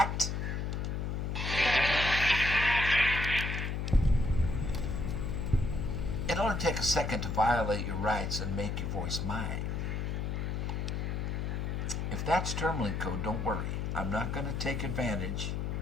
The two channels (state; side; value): noise; left; hum, 1 dB below the sound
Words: It'll only take a second to violate your rights and make your voice mine. If that's terminaling code, don't worry. I'm not going to take advantage